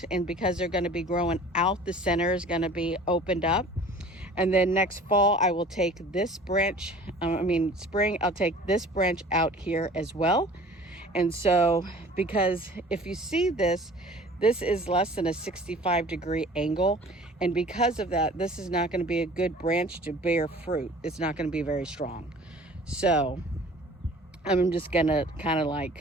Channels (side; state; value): both; normal; correlation 0.46